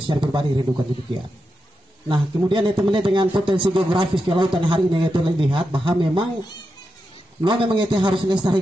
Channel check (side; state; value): both; normal; correlation 0.88